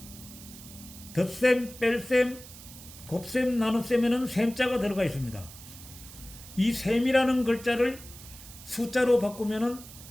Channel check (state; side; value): noise; right; hiss, 17 dB below the sound